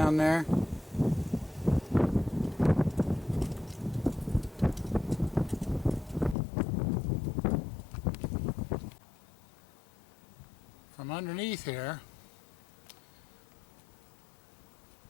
there. From underneath here,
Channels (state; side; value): drops out; right; at 6.4 s